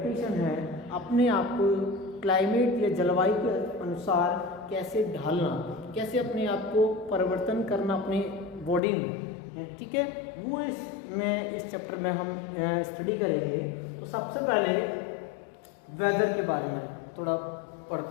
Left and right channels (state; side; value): drops out; right; at 8.8 s